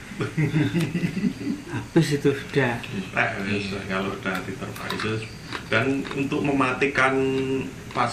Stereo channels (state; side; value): identical; both; correlation 1.00